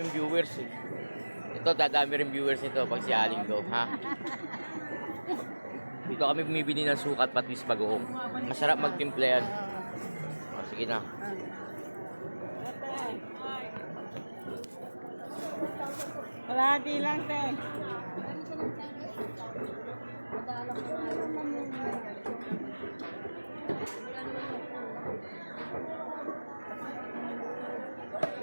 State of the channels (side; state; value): both; inverted; correlation -1.00